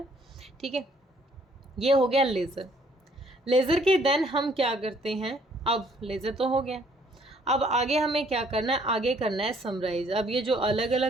ठीक है। ये हो गया लेज़र। लेज़र के देन हम क्या करते हैं, अब लेज़र तो हो गया, अब आगे हमें क्या करना है, आगे करना है समराइज। अब ये जो अलग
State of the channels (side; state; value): both; normal; correlation 0.63